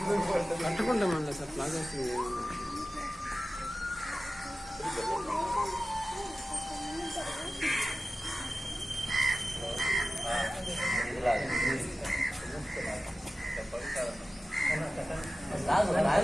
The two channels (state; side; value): normal; both; correlation 0.95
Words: కట్టుకుంటామండి సార్ ప్లాగా.